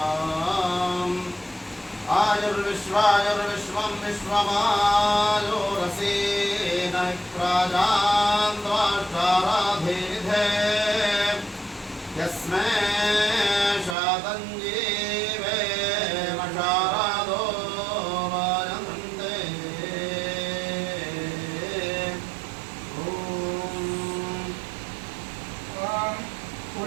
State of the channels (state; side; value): drops out; left; at 14.0 s